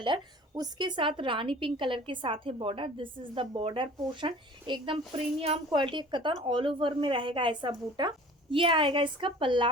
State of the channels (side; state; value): both; normal; correlation 0.46